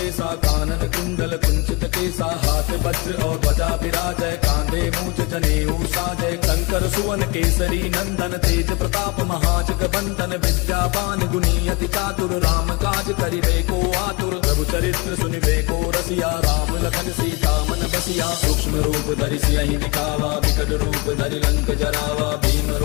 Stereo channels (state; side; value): quieter; right; 26.4 dB